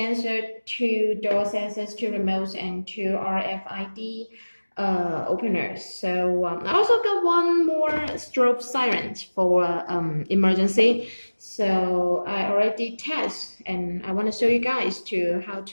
two door sensors, two remotes, and two RFID openers. So I also got one more strobe siren for emergency. So I already test, and I want to show you guys to how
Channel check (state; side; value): inverted; both; correlation -1.00